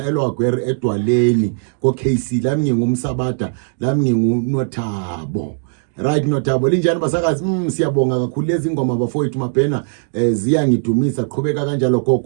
eLwagwere edwaleni ko KC lami ngingumsabada lami nginguNothabo right Nothabo linjani basakazi siyabonga kakhulu lezi ingoma bafowethu Mabhena ziyangidumisa qhubeka kanjalo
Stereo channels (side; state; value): left; silent; digital silence